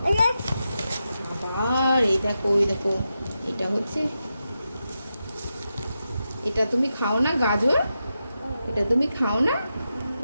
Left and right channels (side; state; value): both; inverted; correlation -0.89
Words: আবার এই দেখো, এই দেখো, এটা হচ্ছে, এটা তুমি খাও না গাজর? এটা তুমি খাও না?